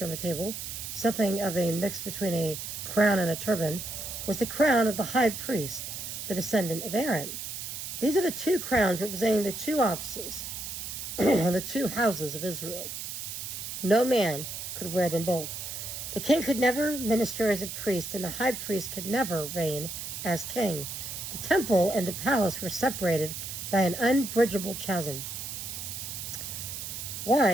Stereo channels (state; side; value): noise; right; hiss, 7 dB below the sound